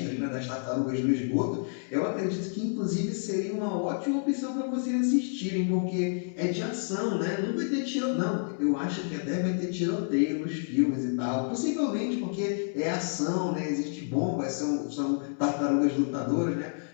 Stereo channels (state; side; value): silent; right; 58 dB below the other